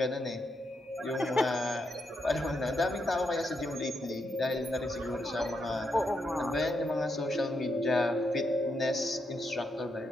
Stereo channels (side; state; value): both; normal; correlation 0.81